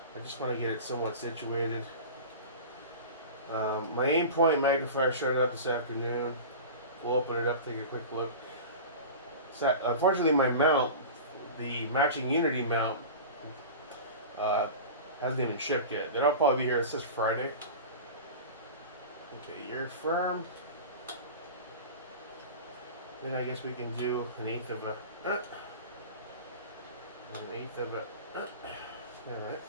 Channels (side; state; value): both; inverted; correlation -0.33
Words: I just want to get it somewhat situated. My Aimpoint magnifier showed up this afternoon. We'll open it up, take a quick look. Unfortunately, my mount, the matching Unity mount, hasn't even shipped yet. That'll probably be here. It says Friday. Okay, you're firm. Then I guess we can do an eighth of a. Alright,